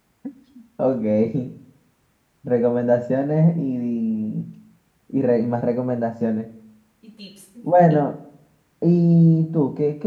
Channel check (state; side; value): identical; both; correlation 1.00